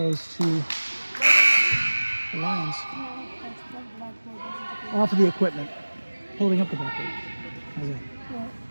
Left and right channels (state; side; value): inverted; both; correlation -1.00